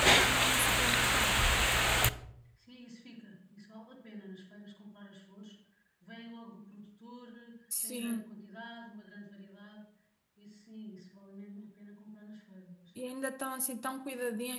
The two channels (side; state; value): both; identical; correlation 1.00